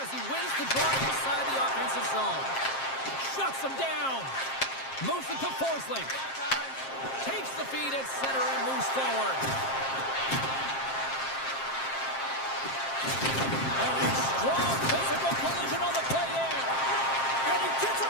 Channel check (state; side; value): late; right; 7.5 ms